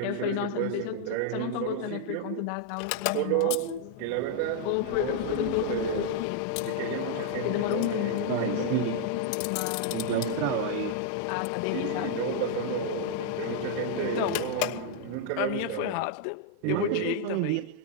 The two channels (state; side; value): different; both; correlation 0.00